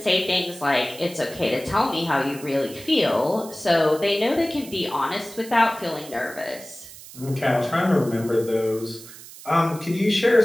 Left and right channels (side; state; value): right; noise; hiss, 17 dB below the sound